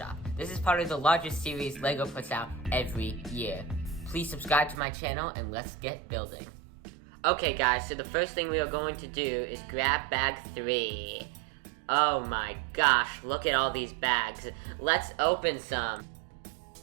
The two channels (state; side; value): drops out; left; at 4.8 s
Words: This is part of the largest series Lego puts out every year. Please subscribe to my channel and let's get building. Okay guys, so the first thing we are going to do is grab bag 3. Oh my gosh, look at all these bags. Let's open some.